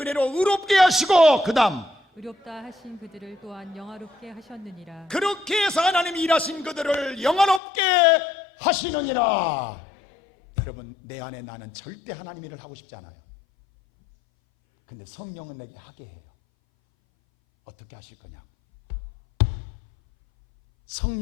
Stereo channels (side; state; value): right; drops out; at 7.6 s